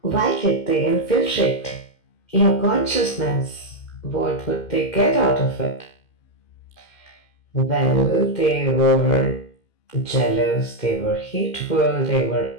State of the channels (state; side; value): late; right; 2.5 ms